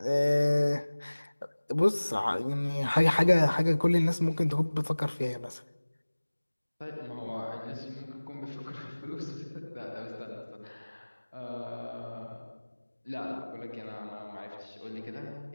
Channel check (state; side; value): inverted; both; correlation -1.00